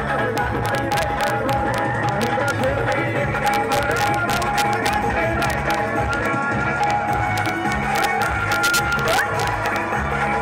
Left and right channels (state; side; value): identical; both; correlation 1.00